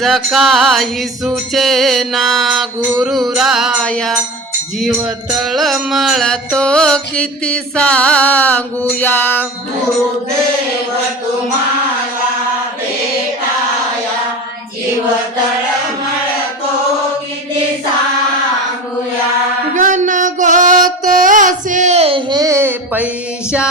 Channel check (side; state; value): both; normal; correlation 0.30